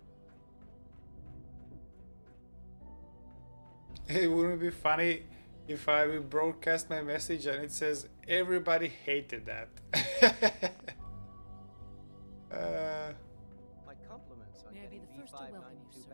fail. It wouldn't be funny if I will broadcast my message and it says everybody hated that. My compliments on May I be getting the first to welcome you, V592 sir.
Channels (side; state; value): both; inverted; correlation -1.00